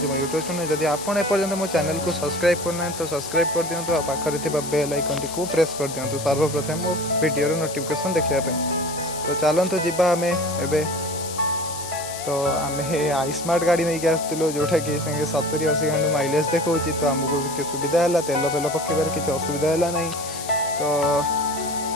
यूट्यूब चैनल जदि आपड़ एपर्यंत मो चैनल को सब्सक्राइब करना तो सब्सक्राइब कर दिंतु आ पाखरे थिबा बेल आइकन टी को प्रेस कर दिंतु सर्वप्रथम मो वीडियो नोटिफिकेशन देखिया पे तो चलतु जीवा आम एबे तो आम आईस्मार्ट गाड़ी नहीं के आसलु जोटा कि 70-80 घंटा माइलेज देखा तो आमको सुविधा है तेल फेल पकेबार किसी असुविधा है ना तो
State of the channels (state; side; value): noise; left; hiss, 10 dB below the sound